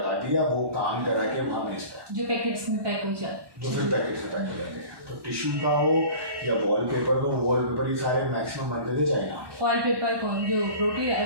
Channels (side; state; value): left; late; 1.1 ms